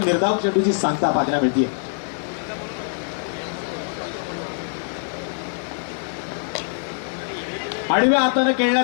निर्धाव चेंडूची सांगता पाहायला मिळते. आडव्या हाताने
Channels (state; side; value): silent; right; 60 dB below the other